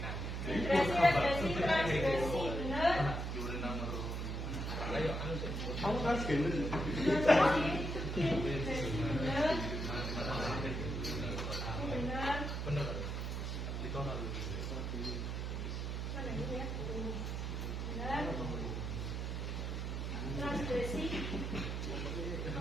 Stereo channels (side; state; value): right; noise; hum, 3 dB below the sound